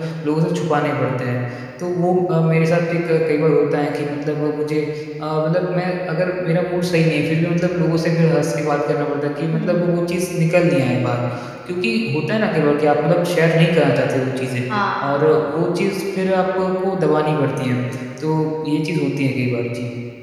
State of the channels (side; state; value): both; identical; correlation 1.00